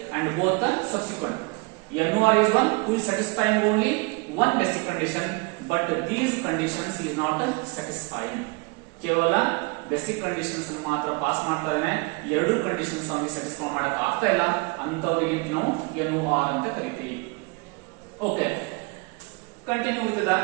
and both the subsequent. NOR is one who is satisfying only one basic condition but these conditions is not satisfying. ಕೇವಲ basic conditions ಮಾತ್ರ pass ಮಾಡ್ತಾ ಇದ್ದಾನೆ, ಎರಡು conditions ಅವನಿಗೆ satisfy ಮಾಡಕ್ ಆಗ್ತಾ ಇಲ್ಲ, ಅಂತವರಿಗೆ ನಾವು NOR ಅಂತ ಕರಿತೀವಿ. Okay, continue with the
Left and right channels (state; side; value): quieter; left; 29.2 dB